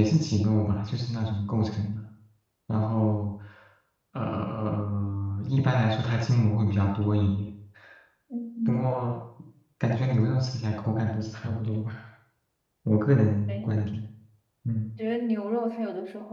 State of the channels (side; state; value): both; identical; correlation 1.00